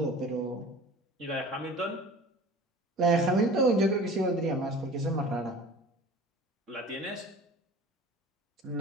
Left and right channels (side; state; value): both; normal; correlation 0.41